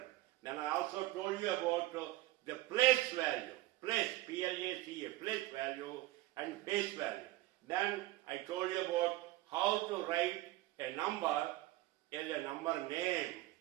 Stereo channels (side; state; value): left; quieter; 17.4 dB